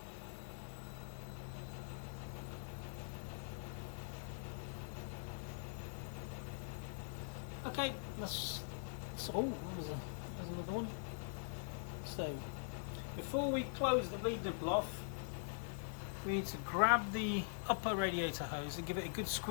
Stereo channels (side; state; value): right; silent; digital silence